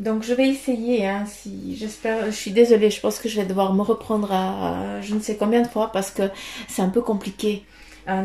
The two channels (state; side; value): identical; both; correlation 1.00